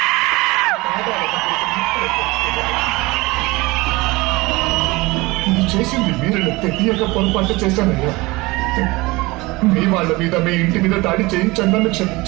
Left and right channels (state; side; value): quieter; left; 22.4 dB